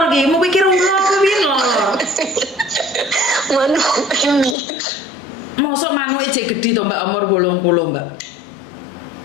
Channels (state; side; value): drops out; right; at 4.5 s